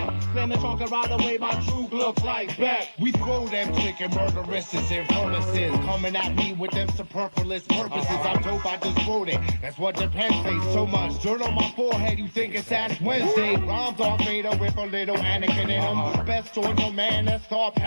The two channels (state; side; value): inverted; both; correlation -1.00